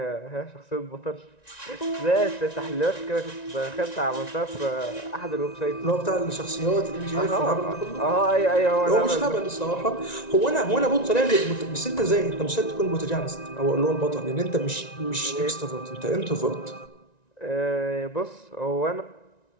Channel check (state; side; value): late; right; 1.9 ms